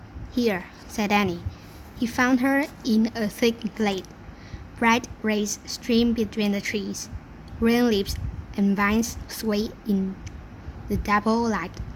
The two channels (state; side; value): identical; both; correlation 1.00